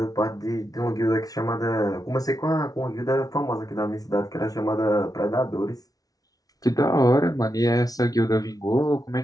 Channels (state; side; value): late; right; 0.18 ms